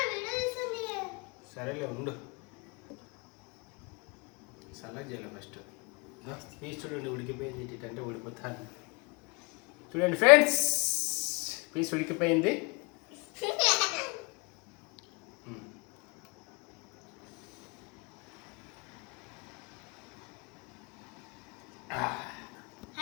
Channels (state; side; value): quieter; right; 29.9 dB